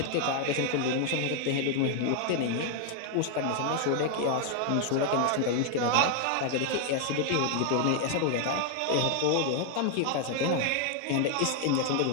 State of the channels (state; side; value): different; both; correlation 0.00